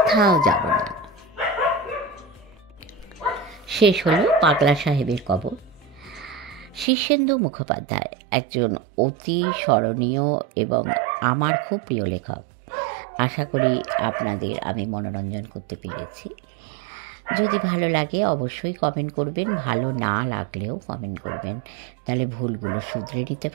যাব না। শেষ হলো পাগলা সাহেবের কবর। শীর্ষেন্দু মুখোপাধ্যায় একজন অতি স্মরণীয় এবং আমার খুব প্রিয় লেখক। আশা করি আপনাদের আমি মনোরঞ্জন করতে পেরেছি। যদি ভালো লাগে অবশ্যই কমেন্ট করবেন, ভালো না লাগলেও কমেন্ট করবেন, তাহলে ভুলগুলো শুধরে নিতে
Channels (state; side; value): drops out; left; at 6.9 s